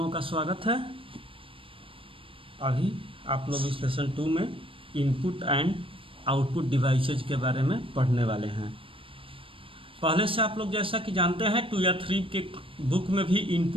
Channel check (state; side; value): late; left; 0.26 ms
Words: का स्वागत है। अभी आप लोग इस लेसन 2 में इनपुट एंड आउटपुट डिवाइसेज के बारे में पढ़ने वाले हैं। पहले से आप लोग जैसा कि जानते हैं 2 या 3 के बुक में भी